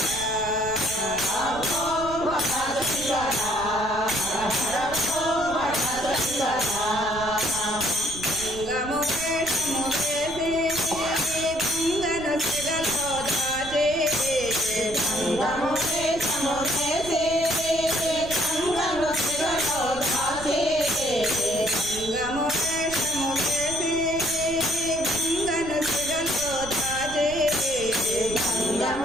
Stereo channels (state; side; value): noise; right; rumble, 13 dB below the sound